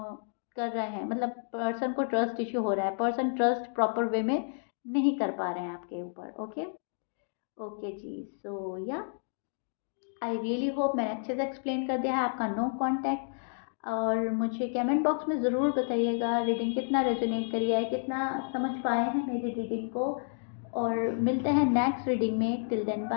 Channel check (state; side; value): silent; right; digital silence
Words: रहे हैं, मतलब पर्सन को ट्रस्ट इश्यू हो रहा है, पर्सन ट्रस्ट प्रॉपर वे में नहीं कर पा रहे हैं आपके ऊपर। ओके, ओके जी, सो या आई रियली होप मैंने अच्छे से एक्सप्लेन कर दिया है आपका नो कांटेक्ट। और मुझे कमेंट बॉक्स में ज़रूर बताइएगा रीडिंग कितना रेजोनेट करी है, कितना समझ पाए हैं मेरी रीडिंग को। और मिलते हैं नेक्स्ट रीडिंग में, till then